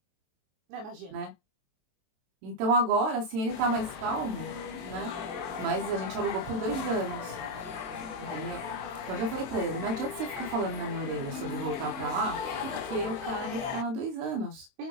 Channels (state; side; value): late; left; 23 ms